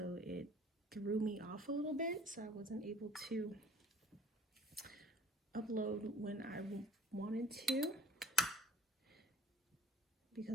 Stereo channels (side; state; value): both; normal; correlation 0.46